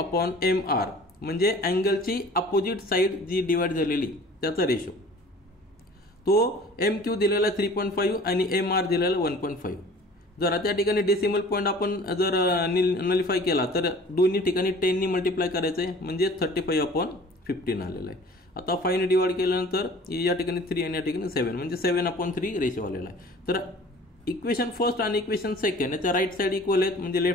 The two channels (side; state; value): both; normal; correlation 0.47